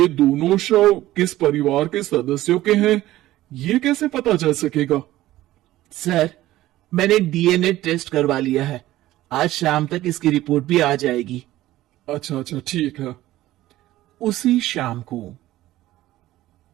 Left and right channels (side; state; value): left; quieter; 15.6 dB